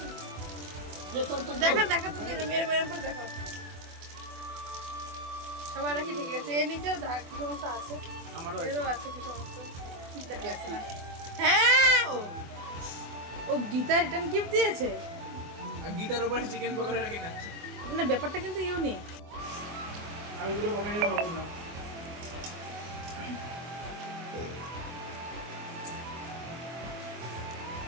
দেখা তো মেরে পরে দেখা। সবার রাখি ঠিক আছে। এর নিচেও কি সমস্যা আছে, এরও আছে কি সমস্যা দেখা যাচ্ছে না। হ্যাঁ, ও গীতা রিটার্ন গিফট দিয়েছে, আর গিটার উপরে চিকেন পকোড়া রেখে খাচ্ছে। না, ব্যাপারটা কিন্তু ইউনিক। আমি পুরো কমেন্টে বলবো না।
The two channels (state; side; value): late; left; 24 ms